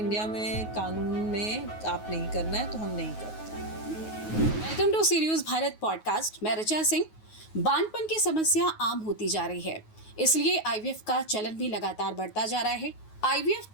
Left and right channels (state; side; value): late; right; 9.4 ms